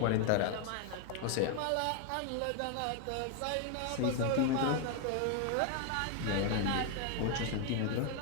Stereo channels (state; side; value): different; both; correlation 0.01